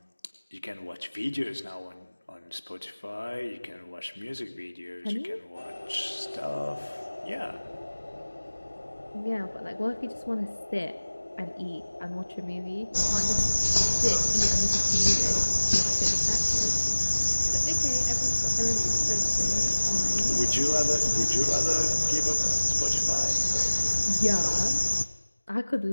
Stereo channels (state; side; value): inverted; both; correlation -1.00